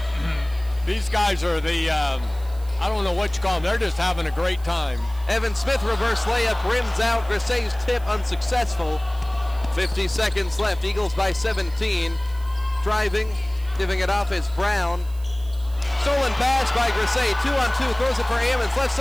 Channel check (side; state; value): right; noise; hiss, 24 dB below the sound